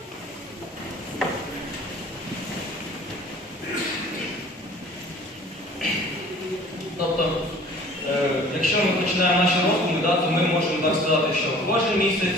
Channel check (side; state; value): both; normal; correlation 0.48